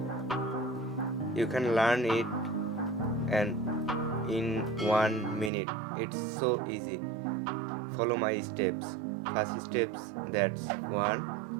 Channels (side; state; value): left; drops out; at 5.5 s